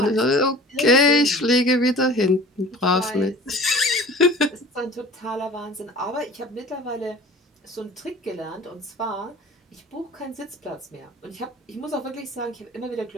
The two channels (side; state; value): both; normal; correlation 0.43